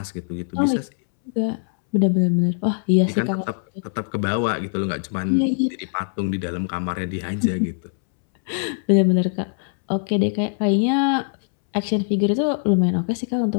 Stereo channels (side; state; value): right; silent; 64 dB below the other